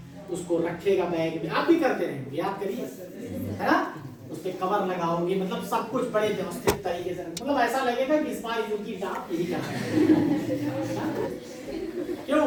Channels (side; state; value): both; identical; correlation 1.00